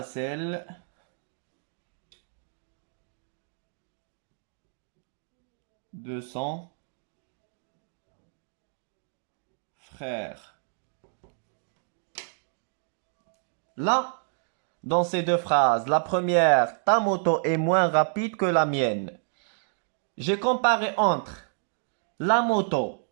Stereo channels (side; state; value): left; silent; digital silence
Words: celle de son frère. Là, dans ces deux phrases, la première, ta moto est moins rapide que la mienne. J'ai comparé entre la moto,